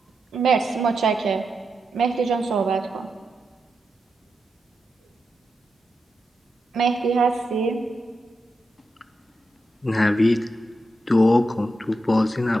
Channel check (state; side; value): normal; both; correlation 0.87